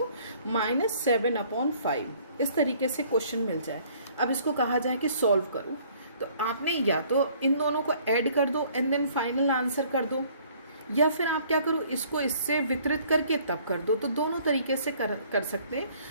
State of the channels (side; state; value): both; inverted; correlation -0.59